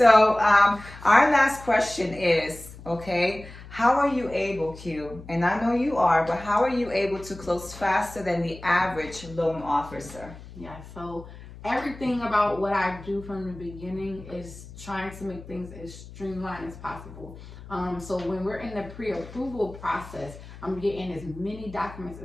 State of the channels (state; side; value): noise; left; hum, 16 dB below the sound